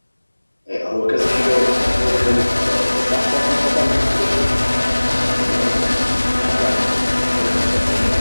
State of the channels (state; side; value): inverted; both; correlation -1.00